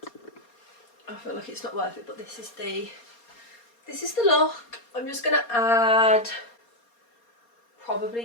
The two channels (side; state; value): right; late; 4.3 ms